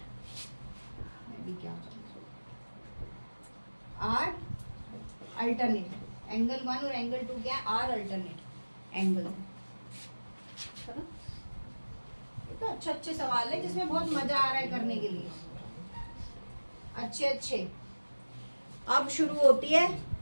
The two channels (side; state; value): both; inverted; correlation -1.00